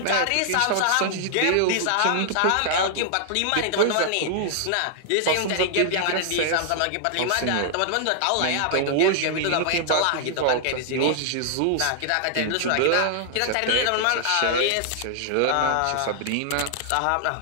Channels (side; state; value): both; different; correlation -0.01